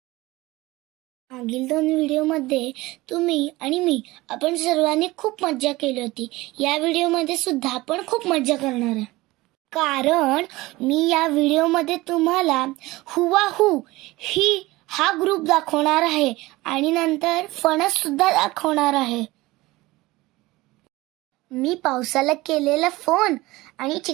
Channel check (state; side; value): quieter; left; 19.9 dB